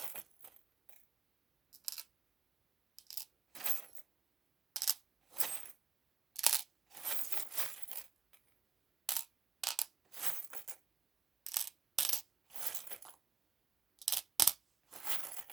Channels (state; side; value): quieter; left; 5.7 dB